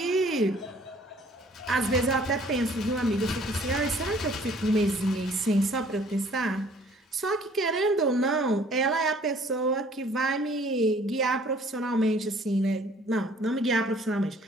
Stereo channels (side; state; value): both; normal; correlation 0.56